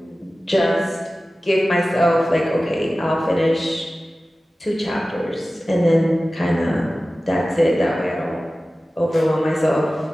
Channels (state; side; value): normal; both; correlation 0.96